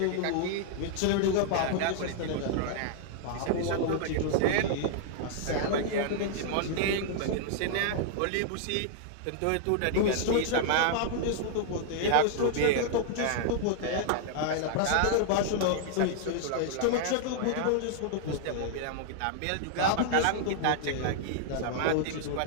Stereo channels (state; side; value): different; both; correlation -0.01